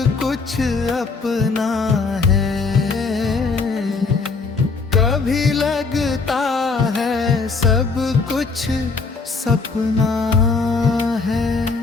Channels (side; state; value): right; quieter; 4.3 dB